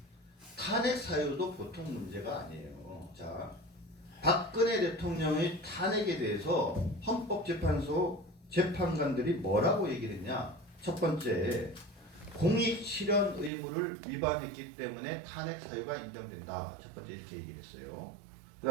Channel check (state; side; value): drops out; left; at 13.5 s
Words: 탄핵 사유도 보통 문제가 아니에요. 자, 박근혜 대통령의 탄핵에 대해서 헌법재판소 재판관들이 뭐라고 얘기를 했냐? 첫 번째, 공익 실현 의무를 위반했기 때문에 탄핵 사유가 인정된다. 첫 번째 이렇게 얘기를 했어요.